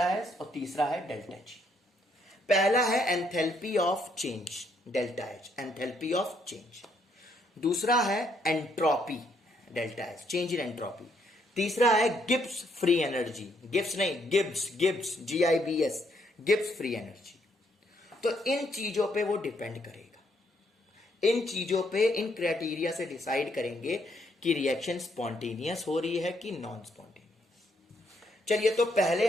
एस, और तीसरा है डेल्टा जी। पहला है enthalpy of change, delta H, enthalpy of change. दूसरा है entropy, delta H, change in entropy. तीसरा है गिब्स फ्री एनर्जी, गिब्स नहीं, Gibbs, GIBS, Gibbs free energy. तो इन चीजों पे वो डिपेंड करेगा, इन चीजों पे, इन क्राइटेरिया से डिसाइड करेंगे कि रिएक्शन स्पॉन्टेनियस हो रही है कि नॉन स्पॉन्टेनियस। चलिए, तो पहले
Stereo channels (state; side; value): normal; both; correlation 0.72